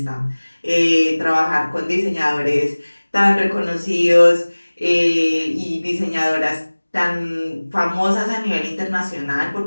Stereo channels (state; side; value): inverted; both; correlation -1.00